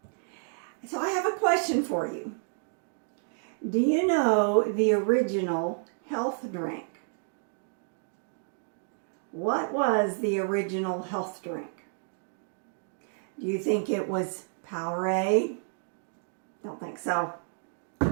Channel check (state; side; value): silent; left; digital silence